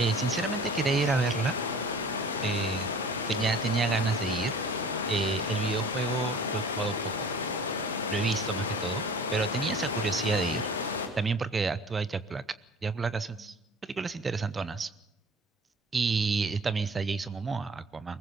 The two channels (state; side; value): normal; both; correlation 0.45